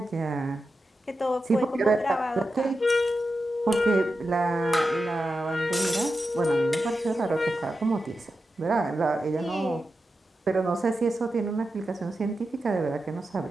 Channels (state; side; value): normal; both; correlation 0.90